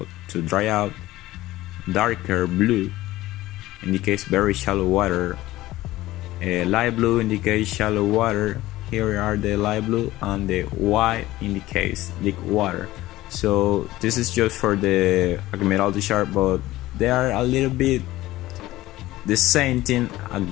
to dry out. Darker blue indicates very shallow water. Light blue indicates shallow water. Here are the light blue, and the white indicates deep water. So this is just for the Admiralty chart, but they are a little bit the same thing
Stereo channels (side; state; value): right; quieter; 16.8 dB